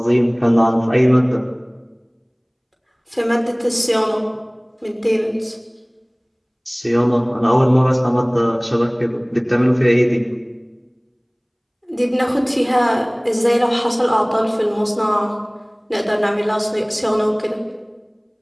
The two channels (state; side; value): identical; both; correlation 1.00